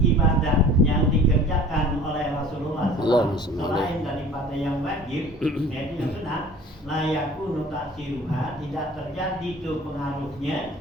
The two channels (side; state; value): both; normal; correlation 0.46